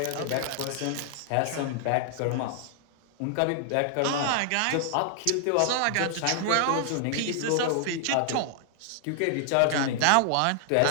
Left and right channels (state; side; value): different; both; correlation -0.01